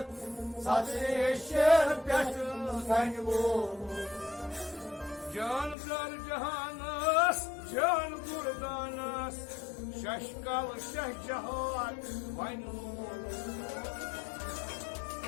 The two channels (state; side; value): drops out; right; at 5.8 s